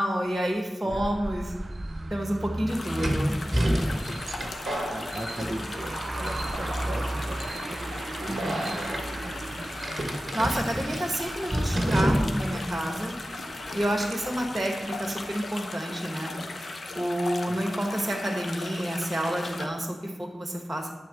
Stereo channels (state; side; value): normal; both; correlation 0.94